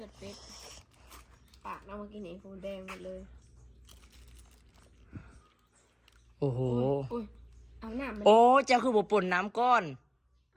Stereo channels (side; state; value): both; identical; correlation 1.00